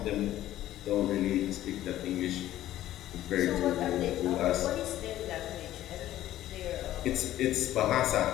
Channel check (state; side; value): quieter; right; 13.6 dB